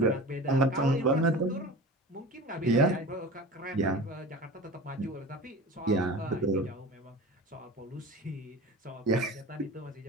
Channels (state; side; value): normal; both; correlation 0.35